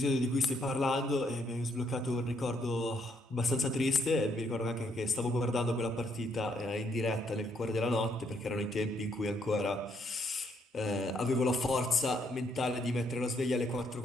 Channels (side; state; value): both; normal; correlation 0.72